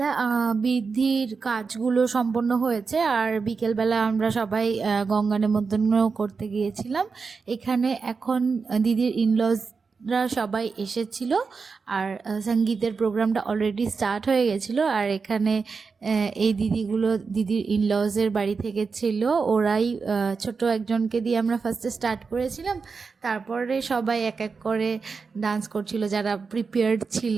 বৃদ্ধির কাজগুলো সম্পন্ন হয়েছে, আর বিকেলবেলা আমরা সবাই গঙ্গা নিমন্ত্রণ করতে গিয়েছিলাম। এখানে এখন দিদির ইনলজরা সবাই এসেছিল, আর সঙ্গীতের প্রোগ্রামটা অলরেডি স্টার্ট হয়ে গেছিলো। আর এখানে এই দিদির ইনলজের বাড়ি থেকে ছিল, ওরাই ছোট একজনকে দিয়ে আমরা ফার্স্টে স্টার্ট করেছিলাম। তারপরে সবাই এক এক করে ডান্স করছিল যারা প্রিপেয়ার্ড ছিল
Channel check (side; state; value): left; quieter; 4.9 dB